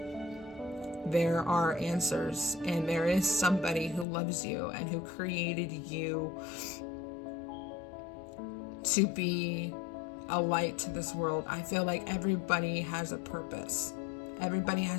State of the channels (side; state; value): right; drops out; at 4.0 s